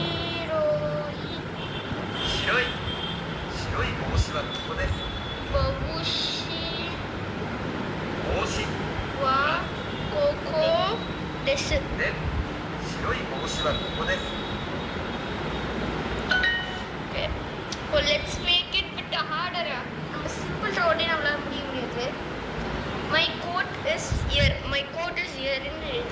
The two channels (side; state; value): both; identical; correlation 1.00